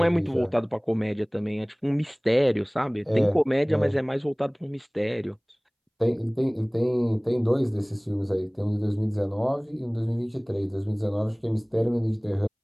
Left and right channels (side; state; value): both; identical; correlation 1.00